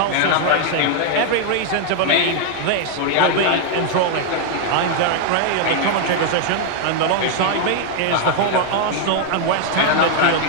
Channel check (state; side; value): different; both; correlation 0.00